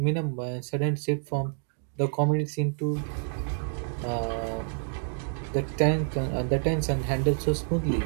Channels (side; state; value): left; silent; 59 dB below the other